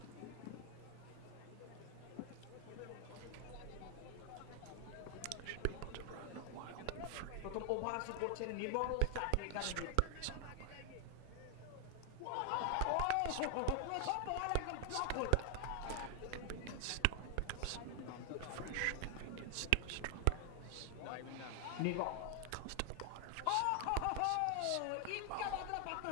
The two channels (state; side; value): different; both; correlation 0.00